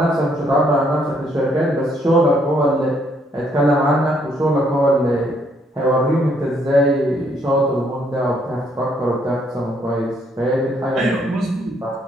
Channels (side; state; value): both; normal; correlation 0.70